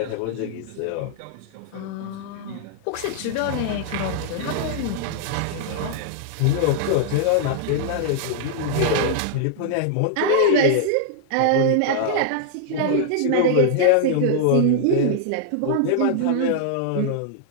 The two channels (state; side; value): different; both; correlation -0.01